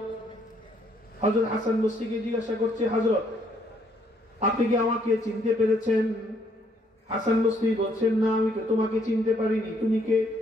হযরত হাসান বসরিকে জিজ্ঞাসা করছে, হযরত, আপনি কি আমাকে চিনতে পেরেছেন? হাসান বসরি বলছেন, না, আমি তো তোমাকে চিনতে পারিনি, তুমি কে?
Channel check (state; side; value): normal; both; correlation 0.69